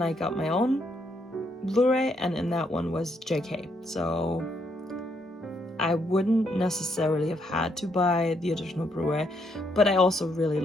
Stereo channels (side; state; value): both; normal; correlation 0.74